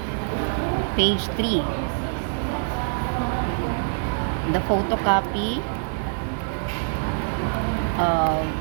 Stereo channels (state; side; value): silent; left; digital silence